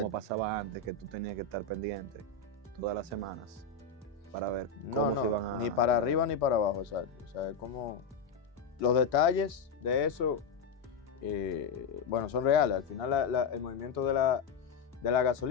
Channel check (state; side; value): quieter; right; 5.0 dB